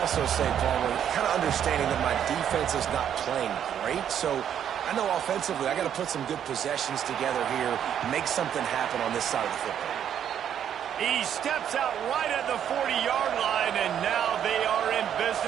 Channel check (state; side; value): quieter; left; 9.3 dB